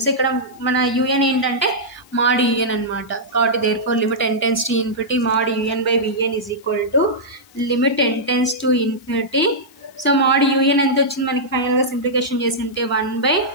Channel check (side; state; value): left; noise; hiss, 28 dB below the sound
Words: So ఇక్కడ మన un ఏంటంటే mod un అనమాట కాబట్టి therefore limit n tends to infinity mod un by vn is equal to limit n tends to infinity. So mod un ఎంత వచ్చింది మనకి ఫైనల్గా సింప్లికేషన్ చేసి ఉంటే 1 by